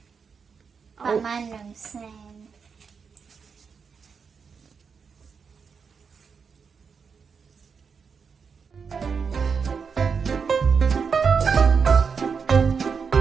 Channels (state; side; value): quieter; left; 5.9 dB